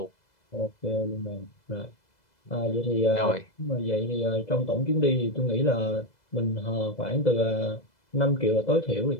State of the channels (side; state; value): right; late; 2.0 ms